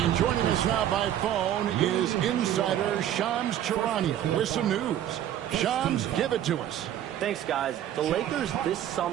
joining us now by phone is insider Shams Charania with some news. Shams, give it to us. Thanks, guys. The Lakers this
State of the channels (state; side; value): quieter; left; 11.3 dB